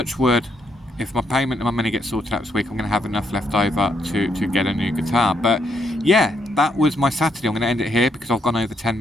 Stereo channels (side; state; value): both; normal; correlation 0.75